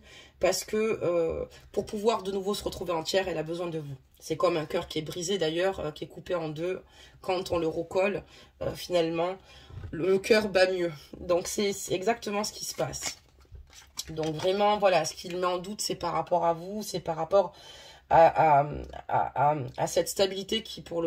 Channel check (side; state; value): both; identical; correlation 1.00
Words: parce que pour pouvoir de nouveau se retrouver entière, elle a besoin de vous. C'est comme un cœur qui est brisé d'ailleurs, qui est coupé en deux. Quand on le recolle, finalement, le cœur bat mieux. Donc c'est exactement ce qui se passe. Donc vraiment, voilà, ce qu'il met en doute, c'est par rapport à vous, c'est par rapport à cette stabilité qui pour